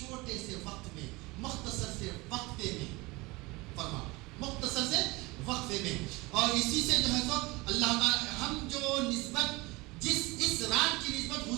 سے وقت میں، مختصر سے وقفے میں، فرما مختصر سے وقفے میں۔ اور اسی سے جو ہے تو اللہ تعالی ہم جو نسبت اس رات کی نسبت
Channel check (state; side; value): quieter; left; 23.4 dB